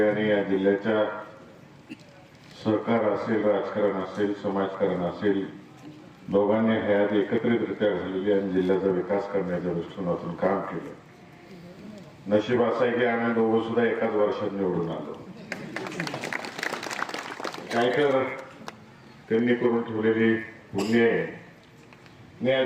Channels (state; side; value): identical; both; correlation 1.00